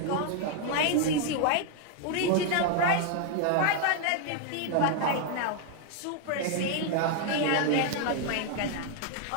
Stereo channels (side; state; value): both; different; correlation 0.00